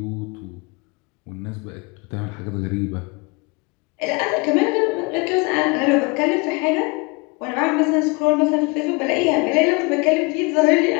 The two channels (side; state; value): right; quieter; 28.6 dB